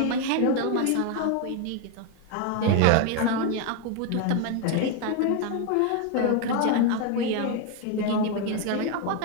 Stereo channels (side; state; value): both; different; correlation 0.01